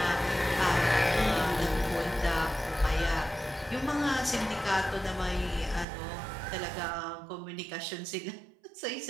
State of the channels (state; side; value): drops out; left; at 5.9 s